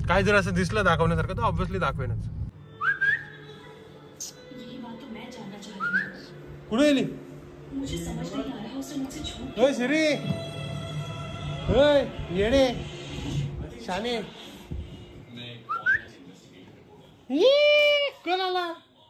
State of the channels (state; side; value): identical; both; correlation 1.00